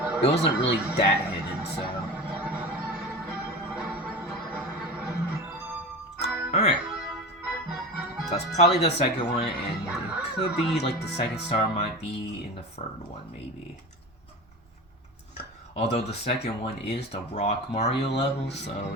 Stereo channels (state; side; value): normal; both; correlation 0.30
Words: It wasn't really that hidden, so... Alright. So that's probably the second one, and it could be, like, the second star might be in the third one, maybe. Although the second one is the Rock Mario level, so